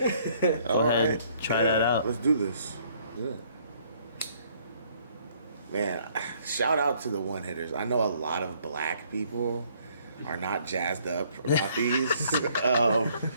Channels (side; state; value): both; inverted; correlation -0.64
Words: Go ahead. Try that out. Let's do this. Yeah. Man, shout out to the one-hitters. I know a lot of black people are not jazzed up about these.